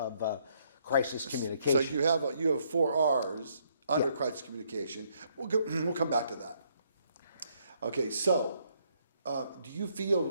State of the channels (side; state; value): both; inverted; correlation -0.70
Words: crisis communication. So you have 4 R's under crisis communication. We'll come back to that. Okay, so do you